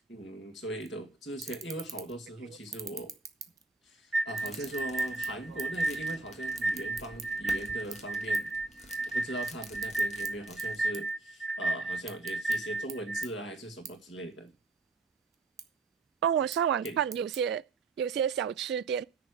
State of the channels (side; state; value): left; quieter; 3.8 dB